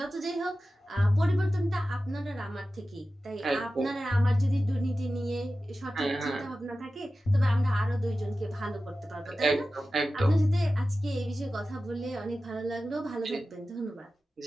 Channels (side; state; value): both; normal; correlation 0.94